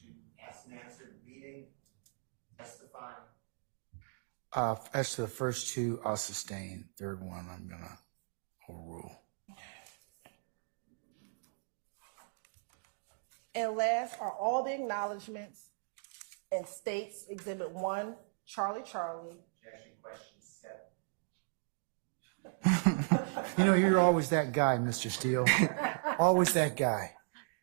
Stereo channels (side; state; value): left; silent; digital silence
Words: Asked and answered, beating, testifying. As to the first two, I'll sustain. Third one, I'm gonna overrule. And last are all the acknowledgments and states Exhibit 1, Charlie. Objection, question 7. You know, you're always that guy, Mr. Steele. Always that guy.